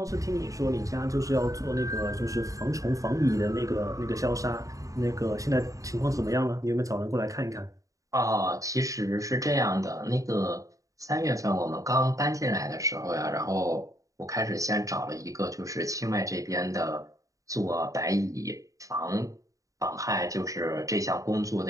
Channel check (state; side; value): late; left; 0.16 ms